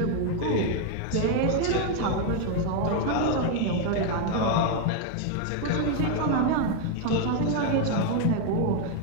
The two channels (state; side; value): different; both; correlation 0.00